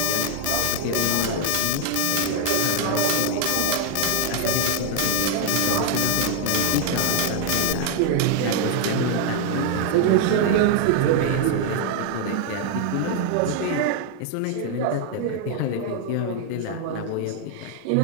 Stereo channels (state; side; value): different; both; correlation 0.00